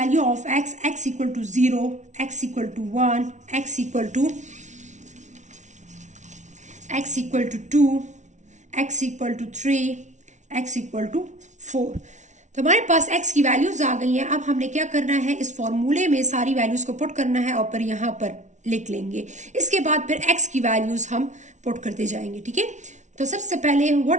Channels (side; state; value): left; late; 0.35 ms